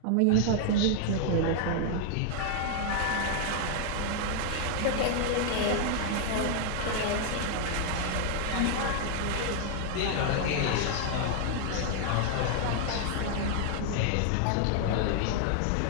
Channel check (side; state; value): both; different; correlation 0.00